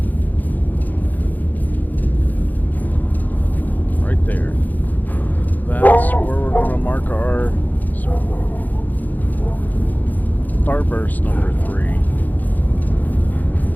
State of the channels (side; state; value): right; late; 0.083 ms